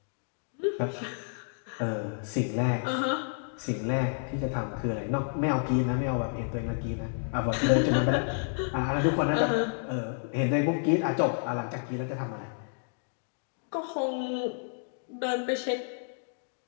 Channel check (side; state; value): right; silent; digital silence